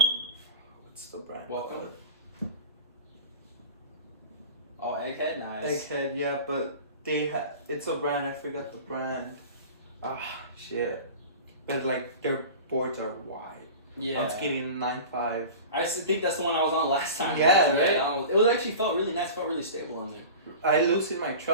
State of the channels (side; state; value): both; inverted; correlation -0.36